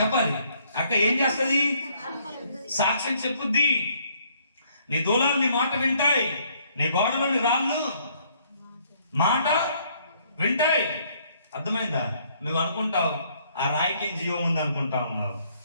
అక్క ఏం చేస్తుంది? సాక్ష్యం చెప్పుద్ది. నీ దూలాలు నీ మాట వింటాయి, నీ గోడలోని రాళ్ళు మాట వింటాయి. అర్థమైందా? నువ్వు అనుకుంటావు ఆ రాయికి జీవం ఉంది అనుకుంటా ఉన్నావు,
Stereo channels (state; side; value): inverted; both; correlation -0.67